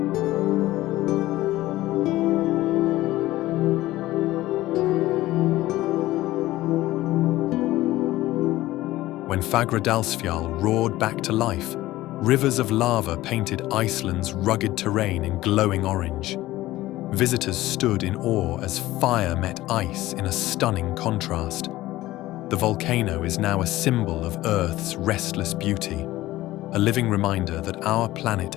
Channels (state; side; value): quieter; right; 16.6 dB